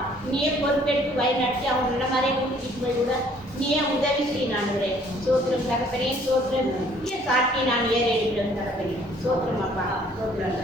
நீயே பொறுப்பெடுத்து வழிநடத்தி அவங்க நல்ல மாதிரியே கூட்டிகிட்டு போய் விட நீயே உதவி செய்ய ஆண்டவரே. சோத்திரம் தகப்பனே, சோத்திரம் சாட்டி நான் ஏற எடுக்கிறேன் தகப்பனே. சோத்திரம் அப்பா,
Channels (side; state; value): both; normal; correlation 0.59